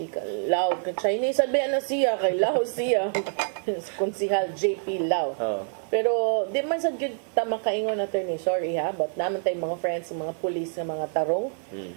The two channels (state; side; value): silent; left; 61 dB below the other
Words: Lau. Chinese sabi na siya, kay Lau siya. Konsihal JP Lau. Pero di man sa good tama kaingon attorney, sorry ha, but naman tayong mga friends, mga police na mga tarong.